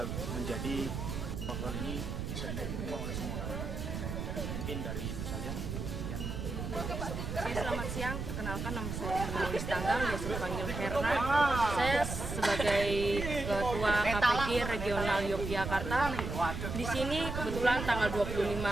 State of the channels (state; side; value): noise; right; rumble, 5 dB below the sound